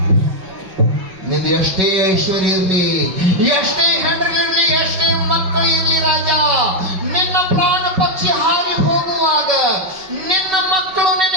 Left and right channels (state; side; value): late; left; 5.3 ms